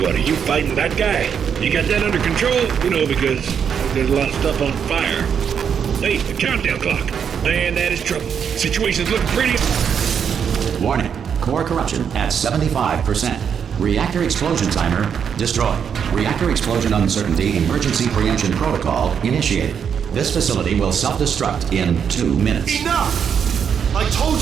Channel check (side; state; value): left; quieter; 7.5 dB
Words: are you fighting that guy? You got that under control? You know, because there's a lot of stuff on fire. Hey, the countdown clock. Man, that is trouble. Situation's looking pretty... Warning. Core corruption at 75%. Reactor explosion timer destroyed. Reactor explosion uncertainty emergency preemption protocol initiated. This facility will self-destruct in 2 minutes. Enough! I told